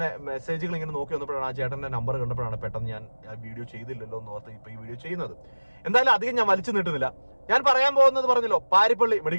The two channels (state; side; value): inverted; both; correlation -1.00